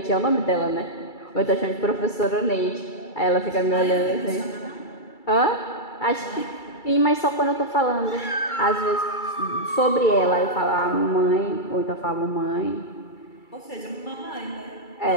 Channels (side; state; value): right; late; 2.3 ms